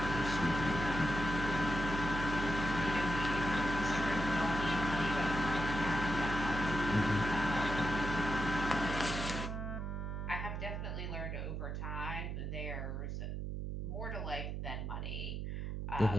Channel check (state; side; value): noise; right; hum, 4 dB below the sound